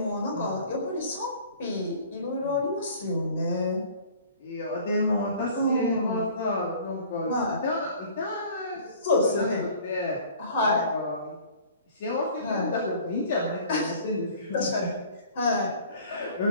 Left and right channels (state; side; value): inverted; both; correlation -0.49